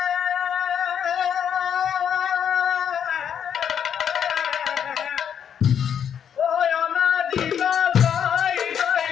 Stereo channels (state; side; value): quieter; right; 8.4 dB